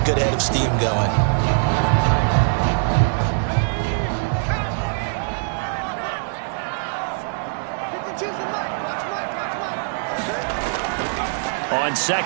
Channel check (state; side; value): silent; left; 64 dB below the other